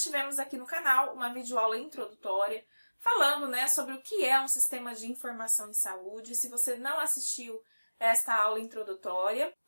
aqui no canal uma videoaula introdutória falando, sobre o que é um sistema de informação em saúde. Se você não assistiu esta aula introdutória,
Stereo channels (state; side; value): inverted; both; correlation -1.00